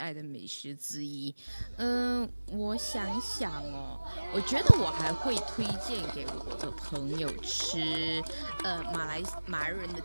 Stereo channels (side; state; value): both; inverted; correlation -1.00